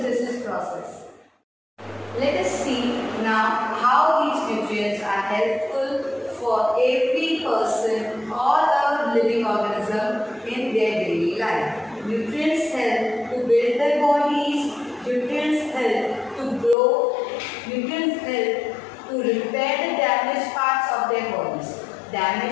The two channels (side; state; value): right; drops out; at 16.8 s